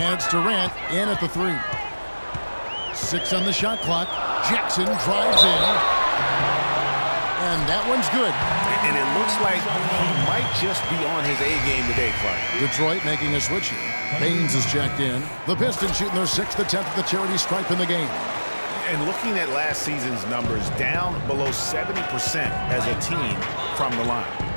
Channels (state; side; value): inverted; both; correlation -1.00